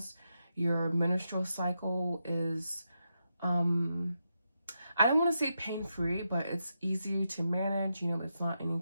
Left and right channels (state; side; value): inverted; both; correlation -0.85